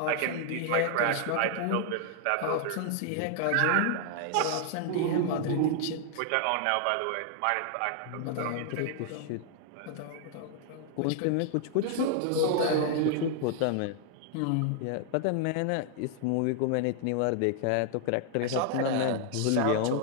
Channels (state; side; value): different; both; correlation 0.00